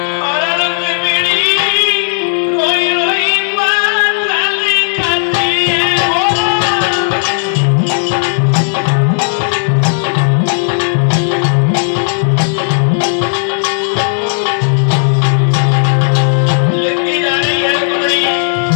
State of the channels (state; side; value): silent; right; digital silence